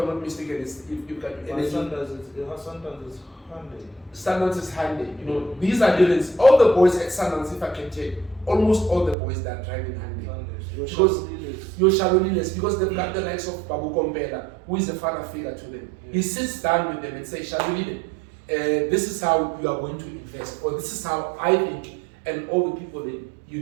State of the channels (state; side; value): drops out; left; at 9.2 s